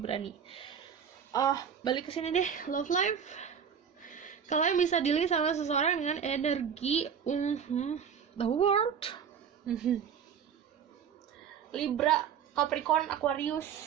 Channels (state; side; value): quieter; left; 7.5 dB